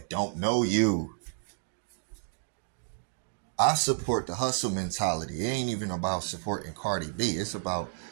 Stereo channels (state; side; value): silent; left; digital silence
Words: don't know you. I support the hustle mentality. It ain't even about supporting Cardi B. It's about